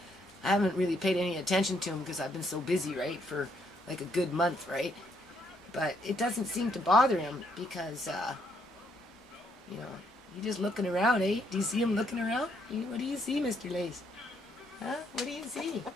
I haven't really paid any attention to him because I've been so busy, right, for like a good month, right? But it doesn't seem to bother him because, you know, he's just looking around, eh? Do you see him looking around? What do you see, Mr. Lace? Huh? What do you see?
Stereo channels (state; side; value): normal; both; correlation 0.72